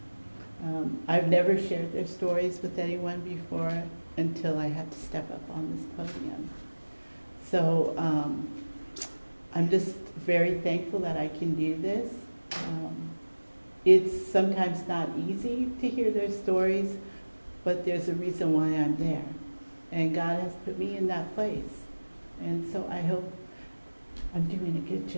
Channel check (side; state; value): both; inverted; correlation -1.00